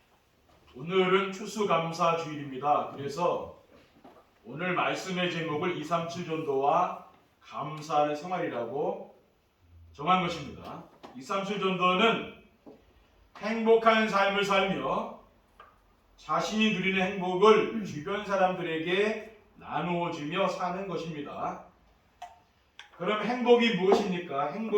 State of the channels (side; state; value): both; identical; correlation 1.00